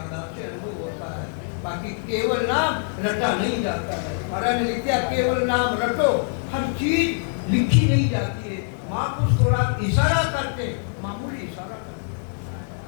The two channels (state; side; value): silent; right; digital silence